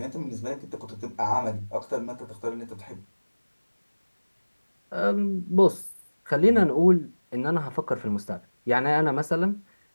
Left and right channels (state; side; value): inverted; both; correlation -1.00